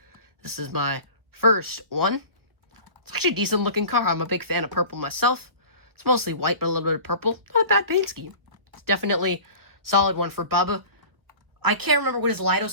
This is my first one. It's actually a decent looking car. I'm a big fan of purple myself. It's mostly white, but a little bit of purple. Not a bad paint scheme. It's definitely a solid one for Bubba. I can't remember what his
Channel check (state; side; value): late; left; 1.3 ms